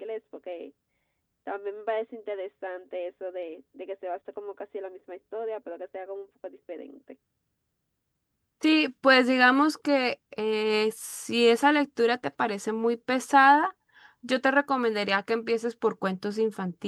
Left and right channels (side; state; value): both; identical; correlation 1.00